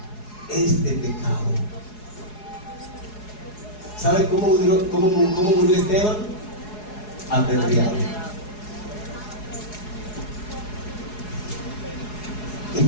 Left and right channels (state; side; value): late; right; 4.8 ms